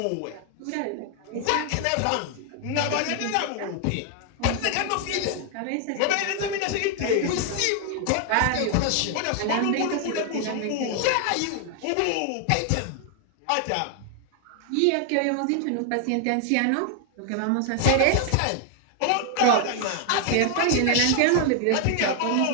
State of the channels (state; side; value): different; both; correlation 0.00